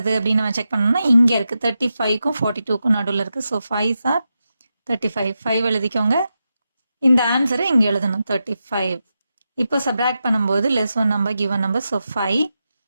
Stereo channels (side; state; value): both; inverted; correlation -0.89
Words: அப்படின்னு நம்ம செக் பண்ணோம்னா இங்கே இருக்குது. 35க்கும் 42க்கும் நடுவில் இருக்குது. So 5s are 35. 5 எழுதிக்கோங்க. இந்த ஆன்சரை இங்கே எழுதணும், 35. இப்போ சப்ராக்ட் பண்ணும்போது less 1 number give 1 number. So 5.